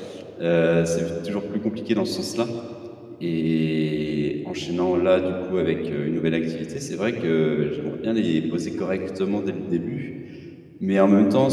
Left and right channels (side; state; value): both; identical; correlation 1.00